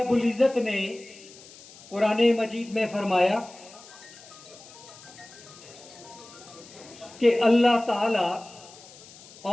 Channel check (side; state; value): left; noise; hiss, 20 dB below the sound